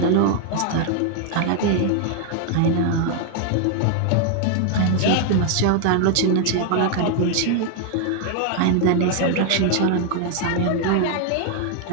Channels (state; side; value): different; both; correlation 0.00